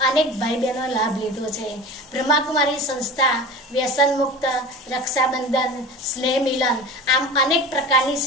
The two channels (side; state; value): both; normal; correlation 0.34